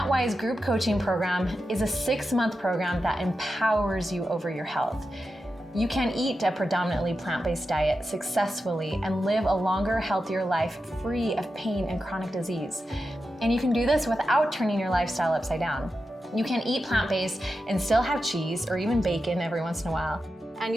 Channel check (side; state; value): both; normal; correlation 0.90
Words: group coaching program is a 6-month program that empowers you over your health. You can eat a predominantly plant-based diet successfully and live a longer, healthier life free of pain and chronic disease. And you can do this without turning your lifestyle upside down. You can eat plant-based and still have cheese or even bacon every once in a while. And